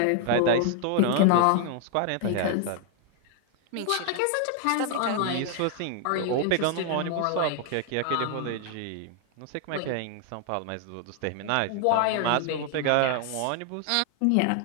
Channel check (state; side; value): different; both; correlation 0.00